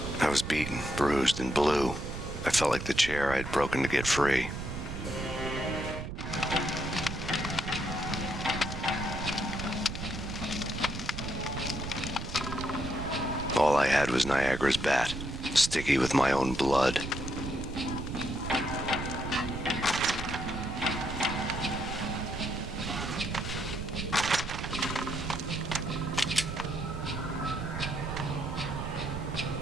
I was beaten, bruised, and blue. I felt like the chair I had broken to get free. All I had was Niagara's bat, sticky with my own blood.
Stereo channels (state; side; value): noise; right; rumble, 7 dB below the sound